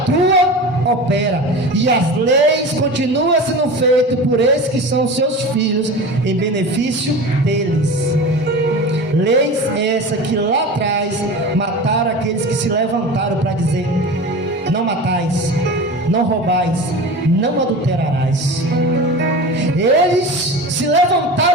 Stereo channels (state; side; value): normal; both; correlation 0.32